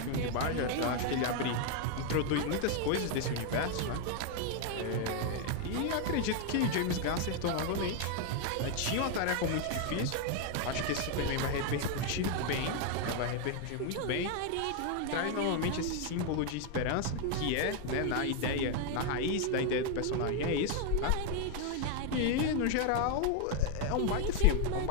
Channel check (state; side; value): different; both; correlation 0.01